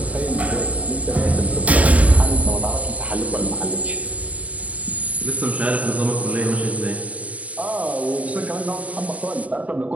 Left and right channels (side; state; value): left; late; 0.069 ms